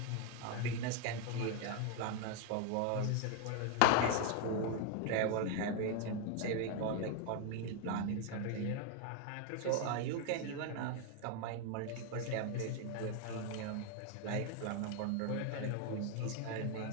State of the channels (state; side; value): different; both; correlation 0.01